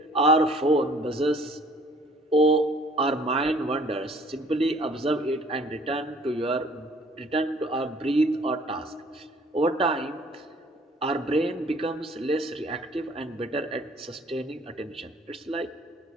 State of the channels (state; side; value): normal; both; correlation 0.56